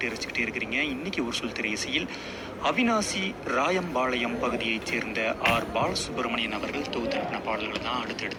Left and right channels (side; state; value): both; identical; correlation 1.00